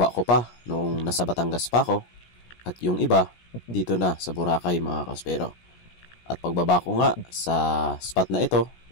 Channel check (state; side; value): late; right; 17 ms